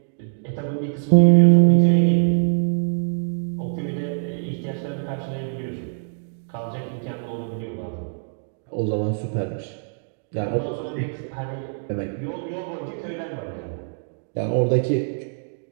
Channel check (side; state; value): left; silent; digital silence